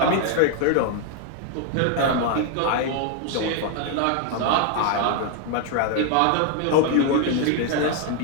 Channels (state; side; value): different; both; correlation 0.00